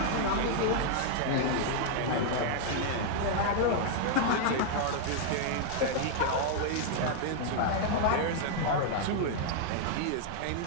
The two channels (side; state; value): both; different; correlation -0.01